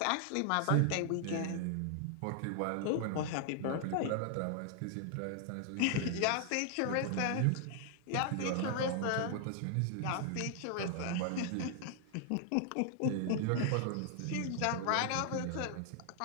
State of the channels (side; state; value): both; different; correlation 0.00